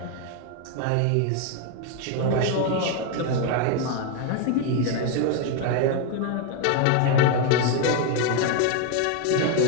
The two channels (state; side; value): different; both; correlation 0.01